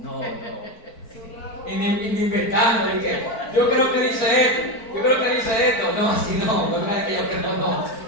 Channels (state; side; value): late; right; 4.5 ms